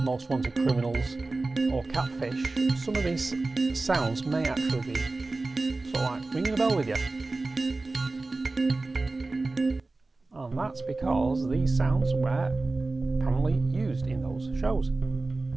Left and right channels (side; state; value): left; quieter; 3.3 dB